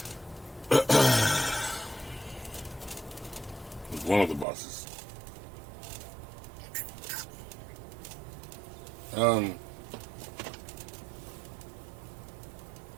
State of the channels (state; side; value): drops out; left; at 4.5 s